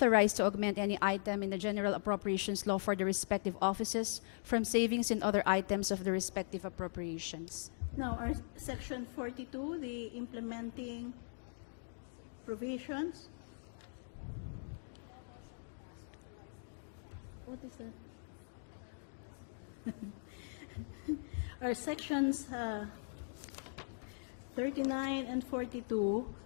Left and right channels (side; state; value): right; silent; digital silence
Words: to augment any item in the general appropriations law for the respective offices from savings in other items of the respective appropriations. Now, our Section 42, the implementing provisions. What is that? Our sections 39 and 42,